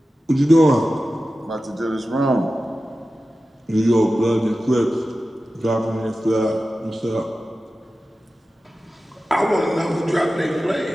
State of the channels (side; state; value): both; normal; correlation 0.94